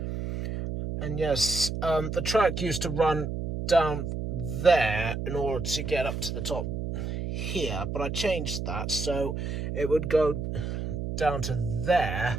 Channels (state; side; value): noise; right; hum, 4 dB below the sound